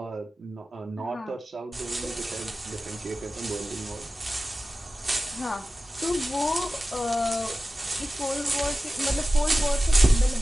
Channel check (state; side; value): normal; both; correlation 0.95